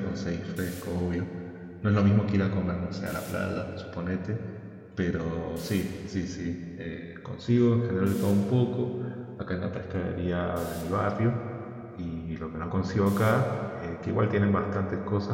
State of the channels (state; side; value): identical; both; correlation 1.00